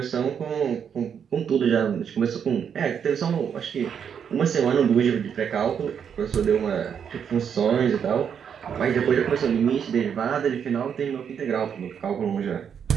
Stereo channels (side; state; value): left; quieter; 7.7 dB